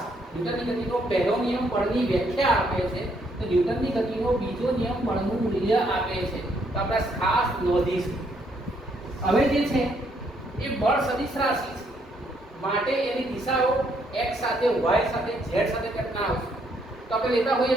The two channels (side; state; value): both; normal; correlation 0.71